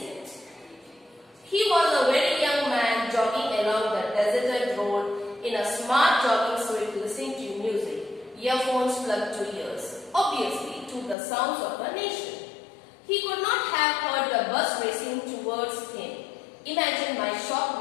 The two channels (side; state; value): right; drops out; at 11.2 s